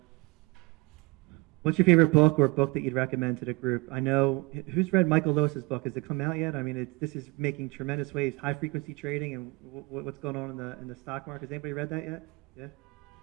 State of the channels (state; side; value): quieter; left; 25.6 dB